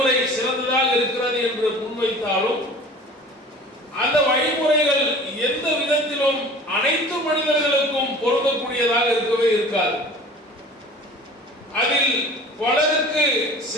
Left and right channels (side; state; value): both; normal; correlation 0.42